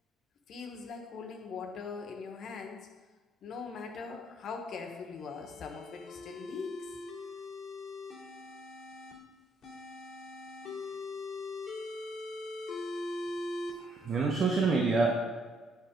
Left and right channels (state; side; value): normal; both; correlation 0.70